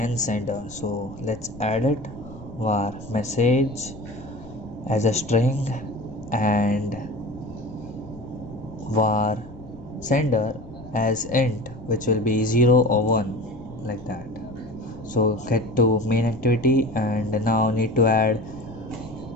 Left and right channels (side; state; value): left; noise; rumble, 18 dB below the sound